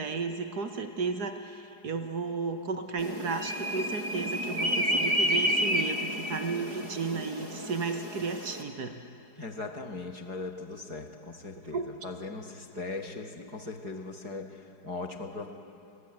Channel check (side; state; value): left; late; 4.8 ms